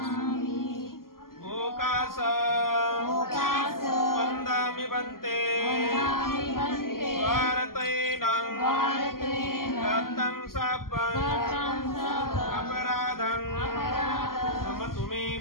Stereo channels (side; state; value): right; late; 0.92 ms